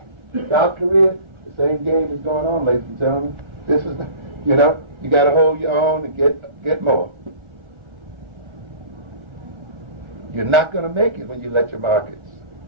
South Korea, the same game is going on, ladies and gentlemen. This is, you got to hold your own and get more. You're not going to make it when you let your markets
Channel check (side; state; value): left; late; 1.4 ms